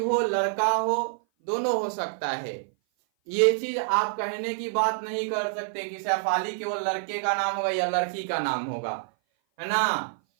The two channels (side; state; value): left; silent; 56 dB below the other